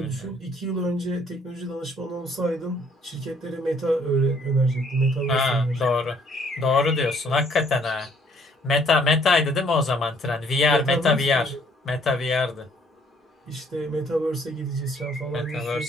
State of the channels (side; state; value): both; normal; correlation 0.63